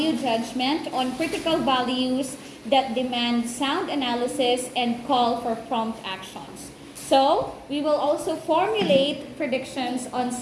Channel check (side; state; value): both; identical; correlation 1.00